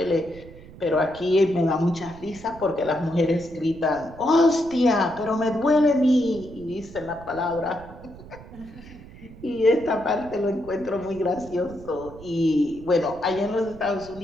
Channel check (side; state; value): right; noise; rumble, 18 dB below the sound